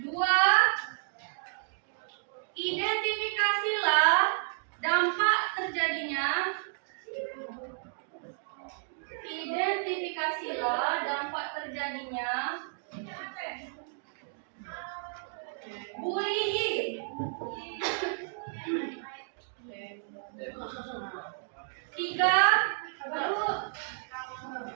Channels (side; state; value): left; silent; digital silence